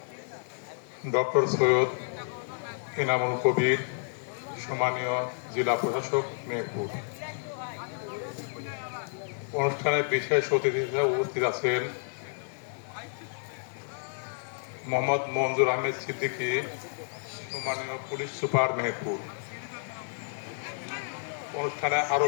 ডক্টর সৈয়দ ইনামুল কবির, সম্মানীয় জেলা প্রশাসক মেহেরপুর। অনুষ্ঠানে বিশেষ অতিথি হিসেবে উপস্থিত আছেন মোহাম্মদ মঞ্জুর আহমেদ সিদ্দিকী, সম্মানীয় পুলিশ সুপার মেহেরপুর। অনুষ্ঠানে আরো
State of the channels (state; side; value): silent; right; digital silence